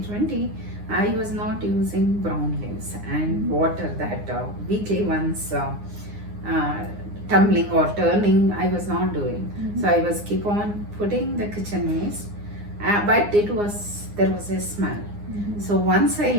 I was not using brown leaves and water that weekly once tumbling or turning, I was not doing. So I was keep on putting the kitchen waste, but there was a smell. So once I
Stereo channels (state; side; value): late; left; 9.7 ms